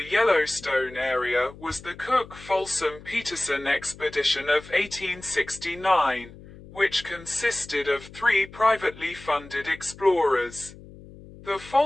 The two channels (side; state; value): left; noise; hum, 18 dB below the sound